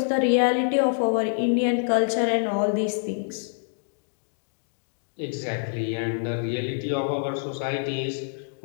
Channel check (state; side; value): silent; right; digital silence